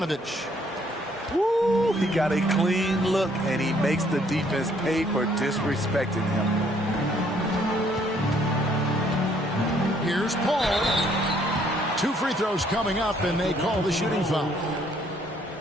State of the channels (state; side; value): normal; both; correlation 0.65